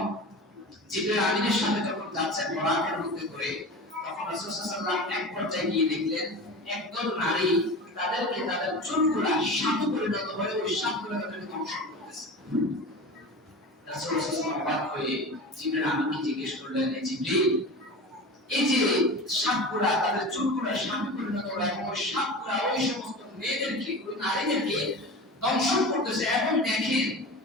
জিবরাইল আমিনের সাথে যখন যাচ্ছেন বরাকের মধ্যে করে, তখন রাসূল সাল্লাল্লাহু আলাইহি ওয়াসাল্লাম এক পর্যায়ে গিয়ে দেখলেন একদল নারী তাদেরকে তাদের চুলগুলা সাপে পরিণত হয়ে ওই সাপগুলো তাদেরকে ধ্বংস করতেছে। রাসূল সাল্লাল্লাহু আলাইহি ওয়াসাল্লাম অবাক হয়ে জিবরাইল আমিনকে জিজ্ঞেস করলেন, জিবরাইল, এই যে সাপগুলা তাদের চুলগুলা সাপে পরিণত হয় এবং ওই সাপগুলা ওই সমস্ত মেয়েদেরকে, ওই নারীদেরকে দংশন করতেছে, এবং দেখেন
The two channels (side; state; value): both; normal; correlation 0.31